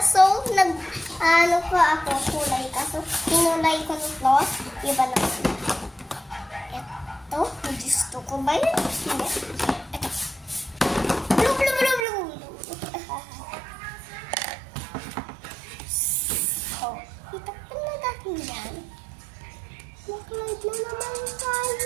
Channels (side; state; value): left; drops out; at 12.1 s